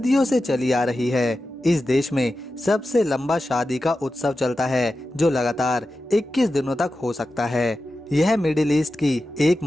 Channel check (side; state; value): both; normal; correlation 0.92